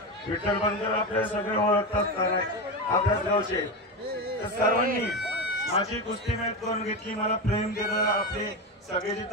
विठ्ठल बनकर आपल्या सगळे ओळखत असतात आपल्याच गावचे. तर सर्वांनी माझी कुस्ती मेहनत करून घेतली. मला प्रेम दिलं. आपले सगळे जे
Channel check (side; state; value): both; normal; correlation 0.17